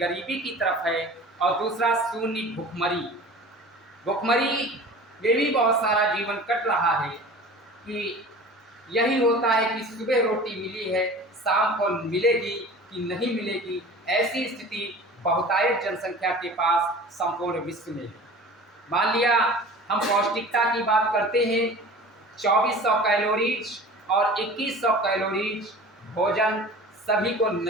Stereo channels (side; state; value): both; normal; correlation 0.40